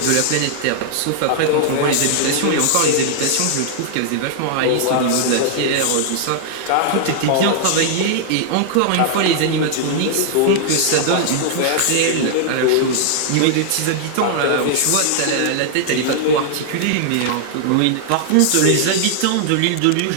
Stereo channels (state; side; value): different; both; correlation -0.01